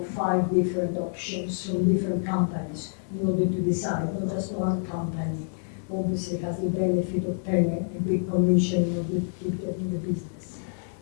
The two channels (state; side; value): silent; right; 57 dB below the other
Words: 5 different options from different companies in order to decide. Not just one company obviously has the benefit of paying a big commission in order to keep getting the business.